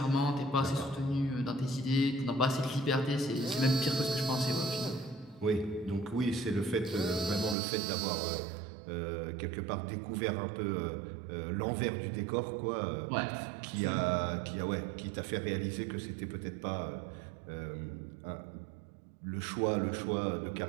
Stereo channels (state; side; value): drops out; left; at 7.6 s